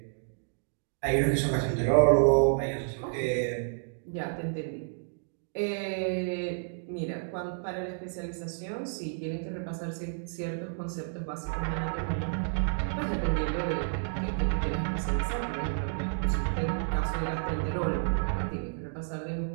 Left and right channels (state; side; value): silent; left; digital silence